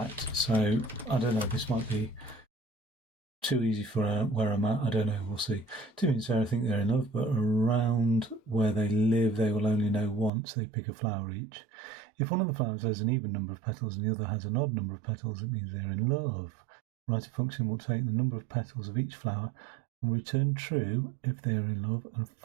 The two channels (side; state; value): left; drops out; at 10.3 s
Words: So I don't know, this might be too easy for where I'm at. I don't know, we'll see. Two means I think they're in love, but around where they live, they will only know once. They pick a flower each. If one of the flowers has an even number of petals and the other has an odd number of petals, it means they're in love. Write a function will take the number of petals of each flower and return true if they are in love and